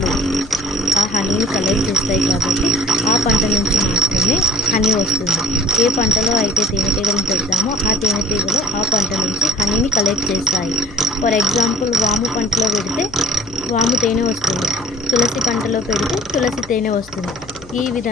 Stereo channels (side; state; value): left; noise; hum, 20 dB below the sound